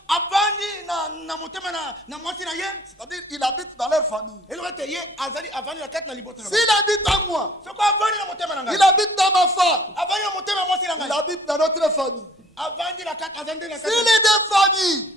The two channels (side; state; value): both; normal; correlation 0.55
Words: avandi na motema na mwasi na ye, c'est-à-dire il habite dans leur famille. elobi ete ye azali avandi na kati na libota na S'il habite en moi, soko avandi na motema na ngai, il habite dans ma femme, avandi na motema ya mwasi na il ngai, habite dans notre famille. Si les deux familles